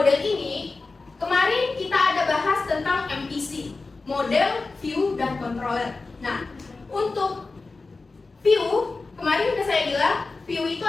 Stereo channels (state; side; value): quieter; right; 3.8 dB